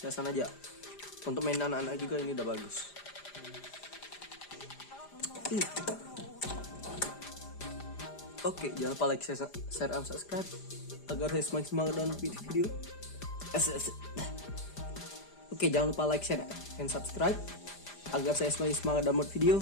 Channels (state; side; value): late; right; 5.0 ms